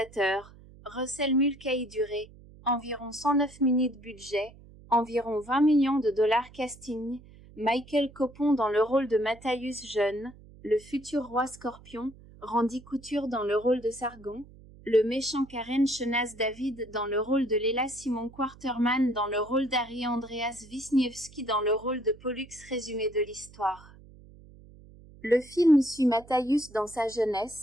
Russell Mulcahy, durée, environ 109 minutes, budget, environ 20 millions de dollars, casting, Michael Copon dans le rôle de Matthäus jeune, le futur roi Scorpion, Randy Couture dans le rôle de Sargon, le méchant Karen Chenas David dans le rôle de Léla, Simon Quarterman dans le rôle d'Harry, Andreas Wisniewski dans le rôle de Pollux. Résumé de l'histoire. Le film suit Matthäus dans sa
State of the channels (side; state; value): right; noise; hum, 22 dB below the sound